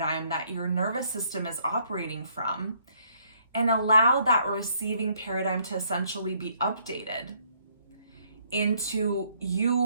that your nervous system is operating from and allow that receiving paradigm to essentially be updated into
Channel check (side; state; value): both; inverted; correlation -0.68